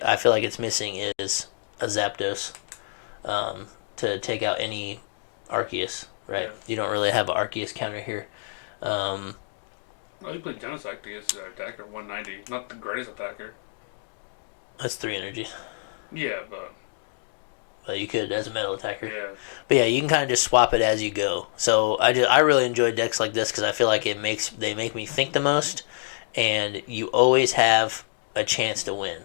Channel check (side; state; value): right; silent; digital silence